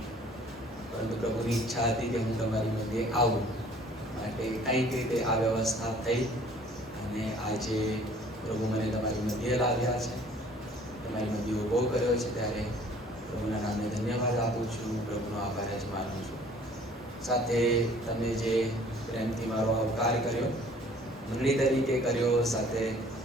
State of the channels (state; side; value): normal; both; correlation 0.54